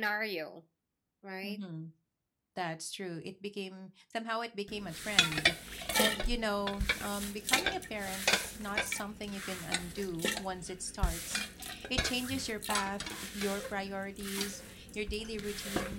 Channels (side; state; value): both; identical; correlation 1.00